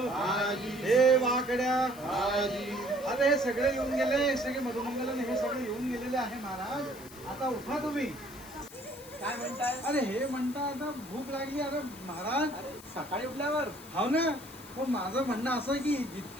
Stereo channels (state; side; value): noise; left; hiss, 18 dB below the sound